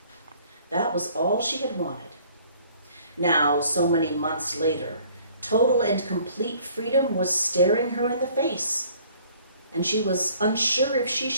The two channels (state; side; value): inverted; both; correlation -0.57